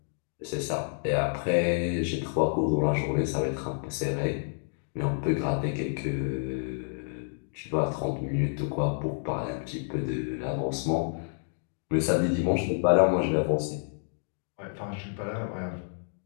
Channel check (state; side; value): silent; right; digital silence